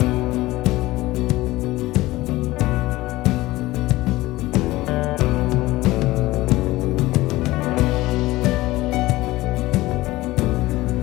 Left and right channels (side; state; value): right; quieter; 18.5 dB